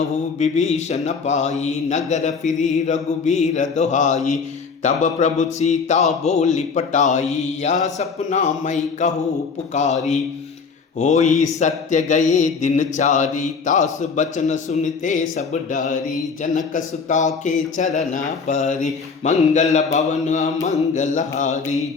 विभीषण पाई नगर फिरी रघुबीर दोहाई तब प्रभु सीता बोली पटाई या सपना मई कहू पुकारी होई सत्य गए दिन चारी तास बचन सुनते सब डारी जनक सुता के चरण परी मंगल भवन मंगलहारी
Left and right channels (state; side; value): quieter; right; 5.2 dB